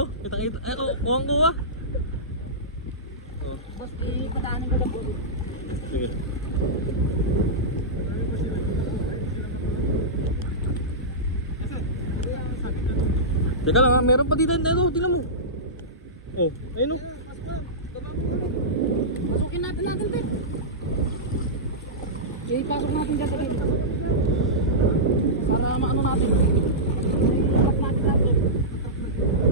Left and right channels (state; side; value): normal; both; correlation -0.15